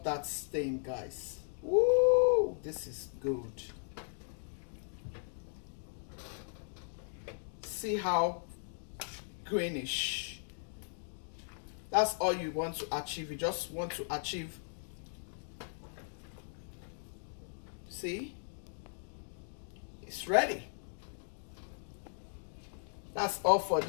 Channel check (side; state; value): right; silent; digital silence